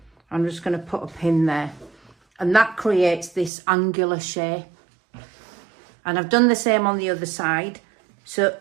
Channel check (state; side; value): drops out; left; at 3.5 s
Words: I'm just going to put a pin there, and that creates this angular shape. And I've done the same on the other side. So